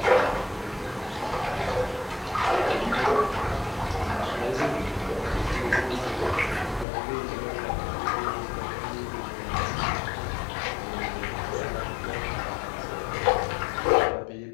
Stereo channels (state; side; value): drops out; right; at 6.9 s